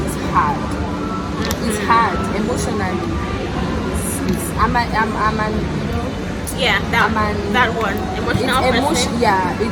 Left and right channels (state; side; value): identical; both; correlation 1.00